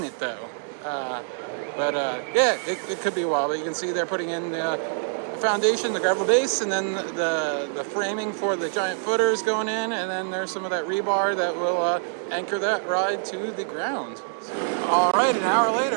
it though. Yeah, it could be a while. But you can see they're putting in the foundation, the gravel base, and then the framing for the giant footers going in, and then there's some of that rebar that will anchor that ride to the ground. All right, an hour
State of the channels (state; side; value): silent; left; digital silence